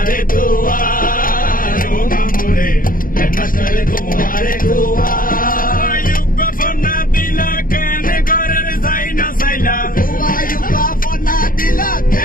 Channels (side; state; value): right; late; 0.41 ms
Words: দোয়া রো মামুরে হেডমাস্টারে তোমারে দোয়া ফোন না দিলা কেন ঘরের যাই না চাইলা ফোন না দিলা